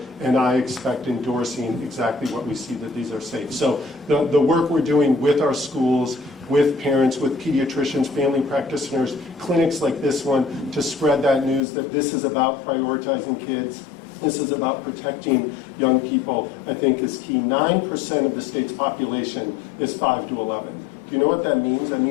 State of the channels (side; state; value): right; drops out; at 11.6 s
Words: and I expect endorsing exactly what we see, that these are safe. So the work we're doing with our schools, with parents, with pediatricians, family practitioners, clinics like this one, to spread that news that this is about prioritizing kids, this is about protecting young people, I think is key. 9% of the state's population is 5 to 11. Do you know what that means? That